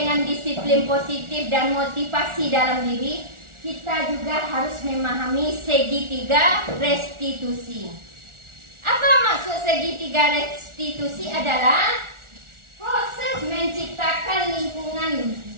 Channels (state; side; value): late; left; 1.4 ms